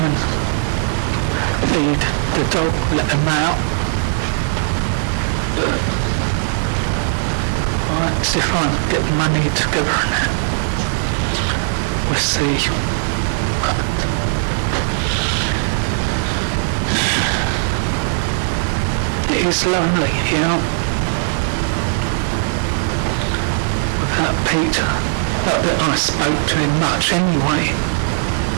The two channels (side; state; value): left; silent; digital silence